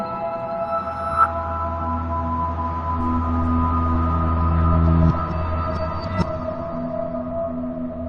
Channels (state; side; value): identical; both; correlation 1.00